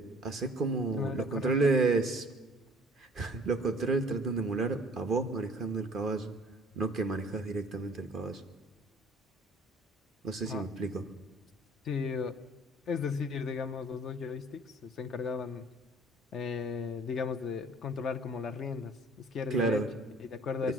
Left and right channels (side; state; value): both; normal; correlation 0.53